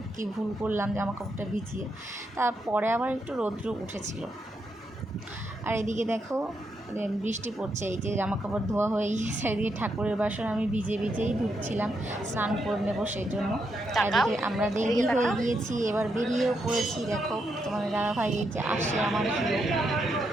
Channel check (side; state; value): both; normal; correlation 0.81